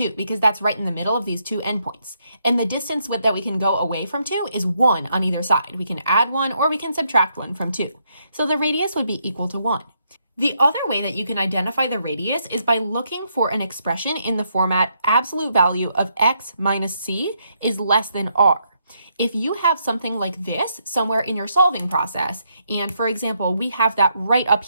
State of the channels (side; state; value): both; inverted; correlation -0.76